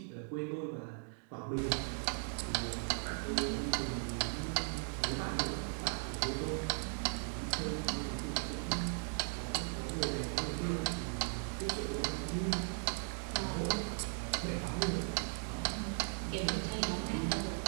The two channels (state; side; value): silent; left; 53 dB below the other